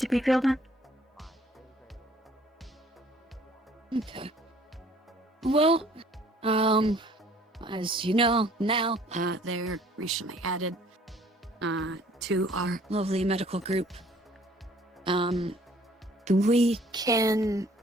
be filled in. Okay. Well, as you know now, they're recently added to our lovely medical group. We can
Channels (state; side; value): normal; both; correlation 0.57